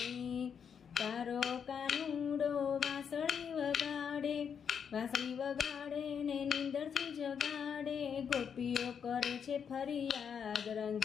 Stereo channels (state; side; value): quieter; right; 7.2 dB